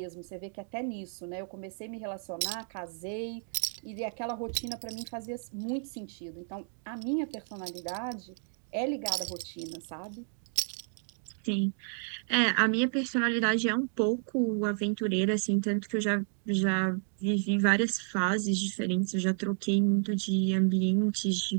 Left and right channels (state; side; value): silent; left; 55 dB below the other